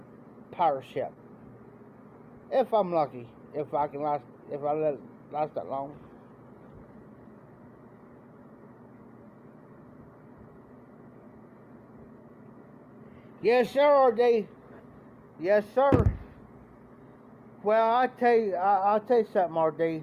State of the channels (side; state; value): both; identical; correlation 1.00